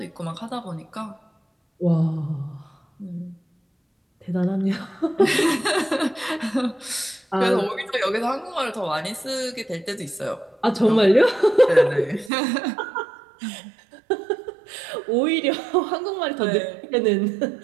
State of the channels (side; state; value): left; drops out; at 12.3 s